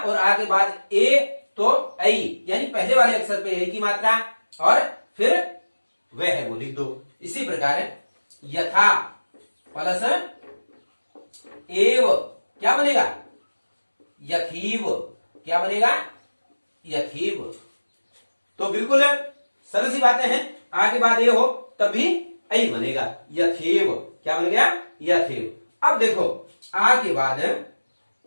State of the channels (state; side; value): inverted; both; correlation -1.00